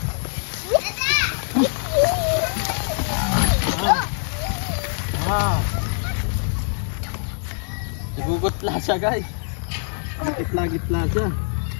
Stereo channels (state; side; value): silent; right; 59 dB below the other